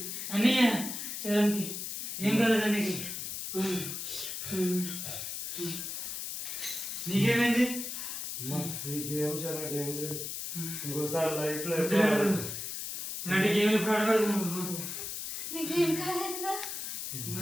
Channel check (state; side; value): noise; left; hiss, 5 dB below the sound